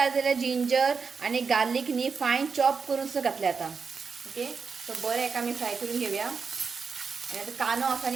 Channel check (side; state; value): left; quieter; 5.3 dB